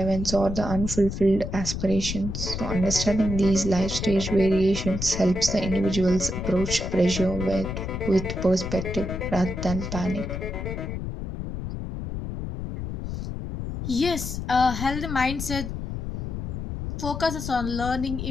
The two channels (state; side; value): noise; left; rumble, 5 dB below the sound